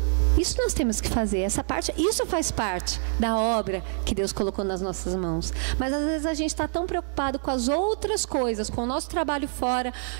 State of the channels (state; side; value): silent; left; digital silence